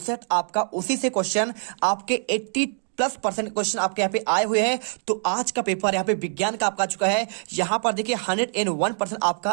सेट आपका, उसी से क्वेश्चन आपके 80+% क्वेश्चन आपके यहाँ पे आए हुए हैं। तो आज का पेपर यहाँ पे विज्ञान का आपका आ चुका है। यहाँ पर देखिए 101% आपका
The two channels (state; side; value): silent; left; 62 dB below the other